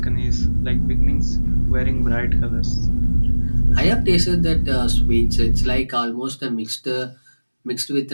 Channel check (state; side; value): inverted; both; correlation -1.00